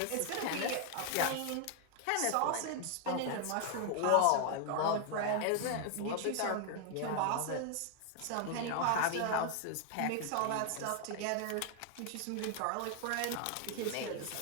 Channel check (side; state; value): both; different; correlation 0.00